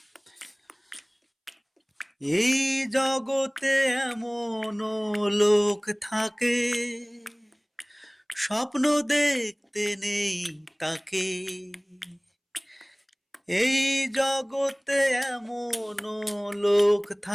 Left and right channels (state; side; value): identical; both; correlation 1.00